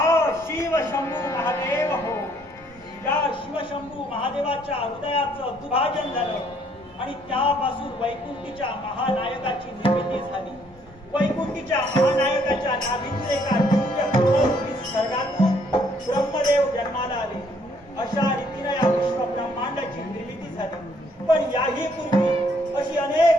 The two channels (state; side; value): normal; both; correlation 0.66